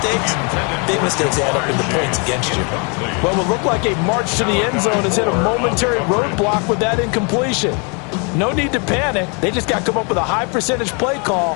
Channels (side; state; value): right; quieter; 34.3 dB